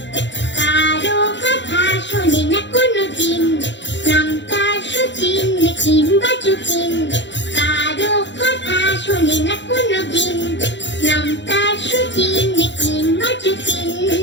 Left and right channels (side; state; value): right; late; 0.52 ms